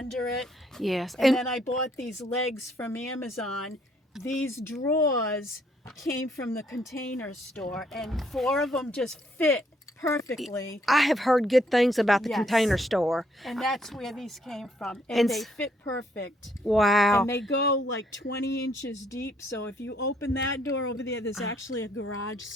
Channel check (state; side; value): normal; both; correlation 0.69